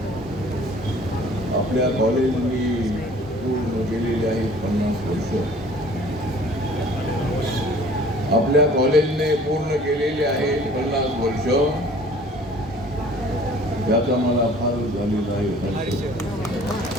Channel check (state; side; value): normal; both; correlation 0.51